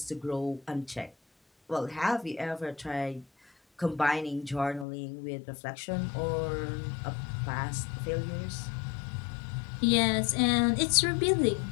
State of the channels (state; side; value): drops out; right; at 4.9 s